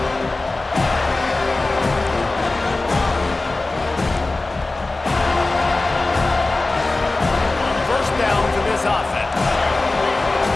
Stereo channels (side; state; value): right; quieter; 3.2 dB